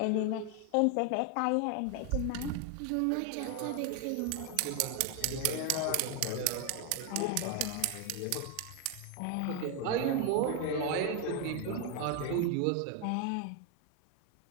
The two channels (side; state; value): both; different; correlation 0.01